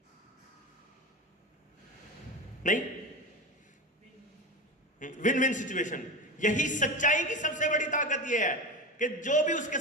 नहीं, विन विन सिचुएशन। यही सच्चाई की सबसे बड़ी ताकत यह है कि जो भी उसके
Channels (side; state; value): both; normal; correlation 0.24